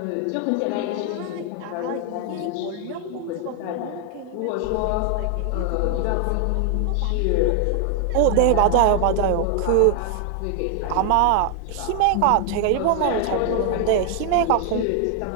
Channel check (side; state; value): both; different; correlation 0.00